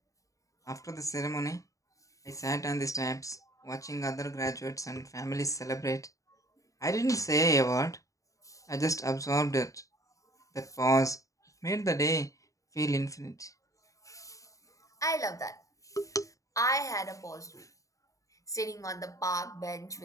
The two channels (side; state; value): right; late; 0.16 ms